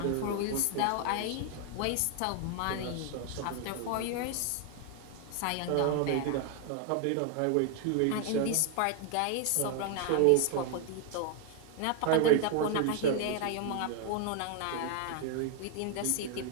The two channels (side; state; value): both; different; correlation 0.00